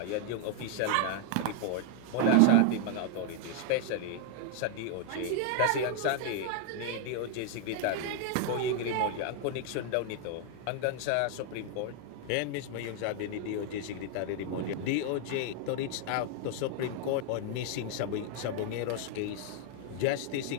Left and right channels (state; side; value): different; both; correlation 0.00